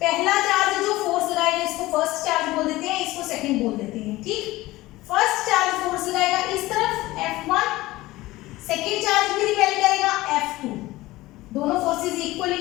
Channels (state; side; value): quieter; right; 18.4 dB